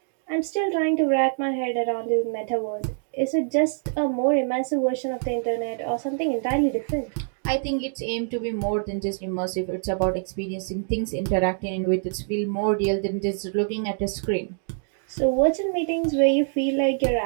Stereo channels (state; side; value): silent; left; 62 dB below the other